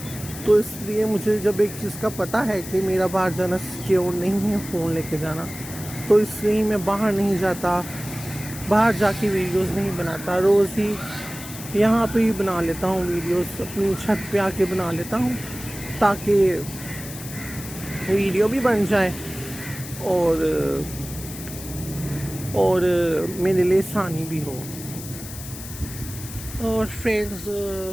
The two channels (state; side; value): noise; left; hiss, 12 dB below the sound